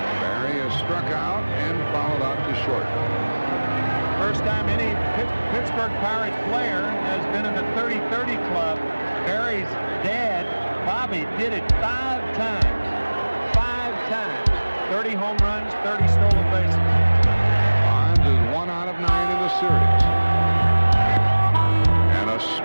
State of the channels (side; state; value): both; inverted; correlation -1.00